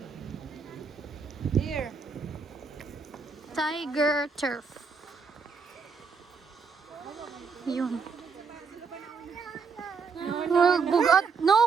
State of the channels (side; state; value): left; quieter; 5.3 dB